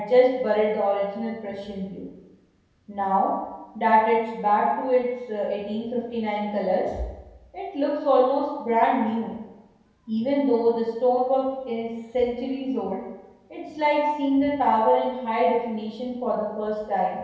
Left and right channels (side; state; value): both; identical; correlation 1.00